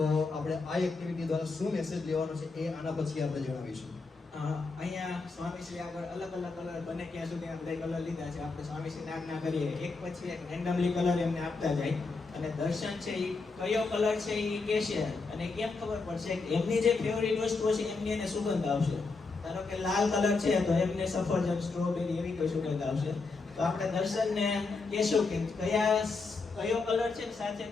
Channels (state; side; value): quieter; right; 4.1 dB